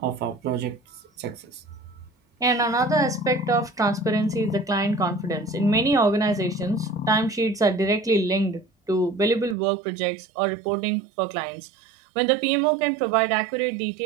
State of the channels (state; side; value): drops out; left; at 9.6 s